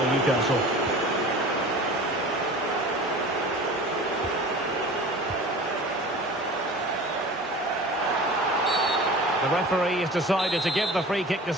Newcastle. The referee has decided to give the free kick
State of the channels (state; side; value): normal; both; correlation 0.39